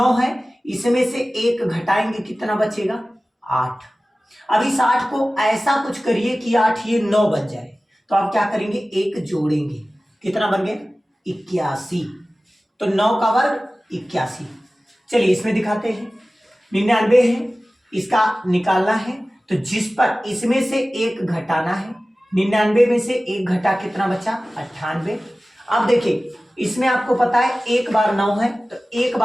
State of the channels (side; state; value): both; normal; correlation 0.97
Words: है, इसमें से 1 घटाएंगे कितना बचेगा 8। अब इस 8 को ऐसा कुछ करिए कि 8 ये 9 बन जाए। तो आप क्या करेंगे 1 जोड़ेंगे, कितना बन गया 81। तो 9 का वर्ग 81। चलिए इसमें दिखाते हैं। 99 है, इसका निकालना है तो जिस पर इसमें से 1 घटाना है। 99 में से 1 घटा कितना बचा 98। अब देखिए इसमें आपको पता है 1 बार 9 है तो 1